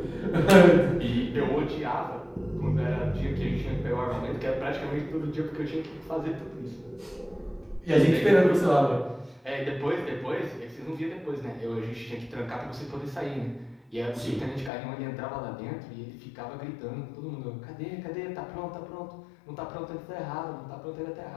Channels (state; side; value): drops out; right; at 14.7 s